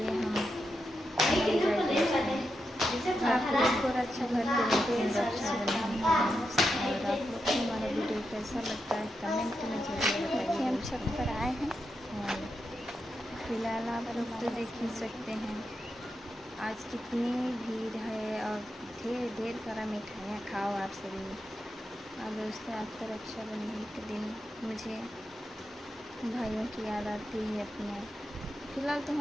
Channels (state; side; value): normal; both; correlation 0.86